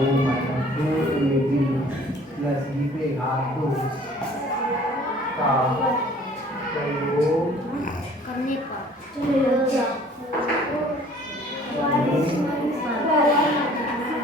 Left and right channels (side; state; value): both; normal; correlation 0.53